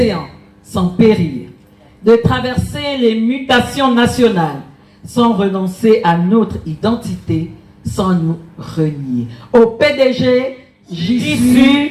sans périr, de traverser les mutations nationales sans renoncer à notre identité, sans nous renier. Au PDG, j'y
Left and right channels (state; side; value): identical; both; correlation 1.00